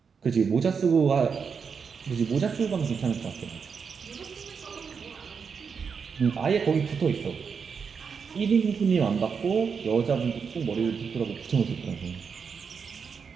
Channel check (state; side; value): quieter; left; 6.0 dB